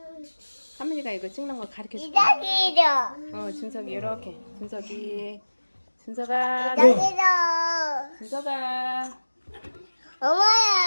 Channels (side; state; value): both; inverted; correlation -1.00